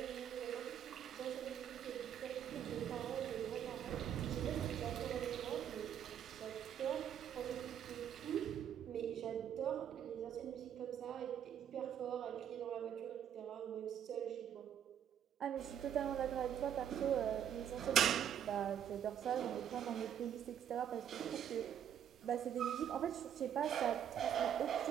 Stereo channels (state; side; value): quieter; left; 9.4 dB